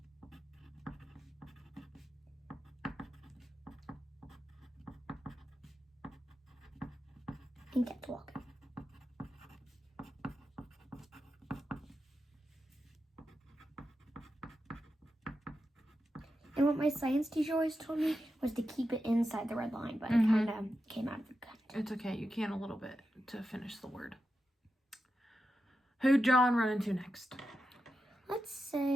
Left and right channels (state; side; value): normal; both; correlation 0.89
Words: And kept walking. And what my science teacher always told me was to keep it inside the red line, but it kind of came out of the cut. It's okay. You can a little bit to finish the word. Who'd John run into next? Let's